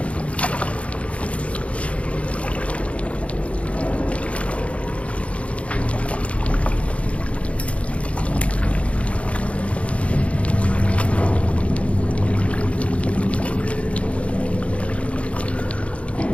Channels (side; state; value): right; late; 0.063 ms